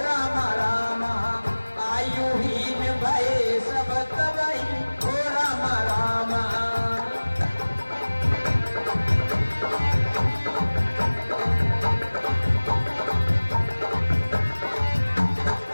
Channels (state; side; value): inverted; both; correlation -1.00